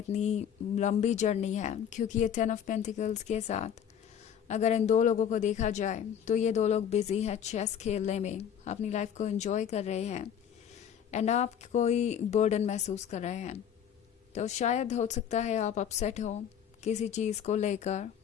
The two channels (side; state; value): right; quieter; 8.8 dB